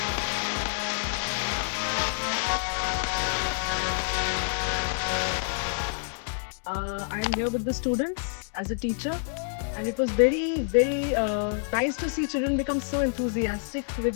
I'm here with the students as a teacher, and it was very nice to see children become so enthusiastic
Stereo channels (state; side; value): silent; right; 60 dB below the other